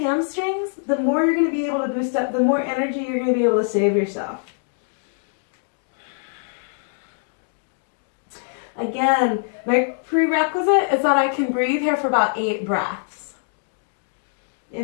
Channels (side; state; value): right; silent; digital silence